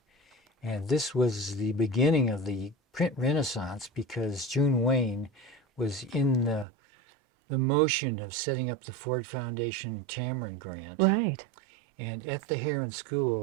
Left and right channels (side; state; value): left; drops out; at 6.7 s